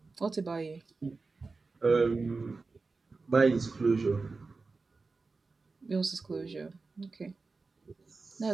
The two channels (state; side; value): quieter; left; 4.0 dB